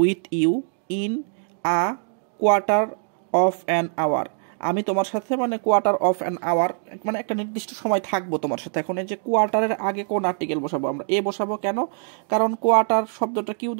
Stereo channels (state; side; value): silent; left; 62 dB below the other